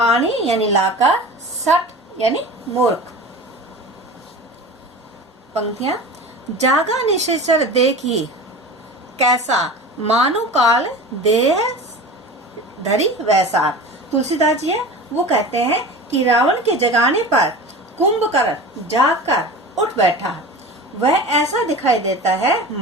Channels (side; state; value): both; normal; correlation 0.34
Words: यानी लाकर। सठ यानी मूर्ख। पंक्तियां। जागा निशिचर देखी कैसा, मानो काल देह धरी वैसा। तुलसीदास जी है वो कहते हैं कि रावण के जगाने पर कुंभकर्ण जागकर उठ बैठा। वह ऐसा दिखाई देता है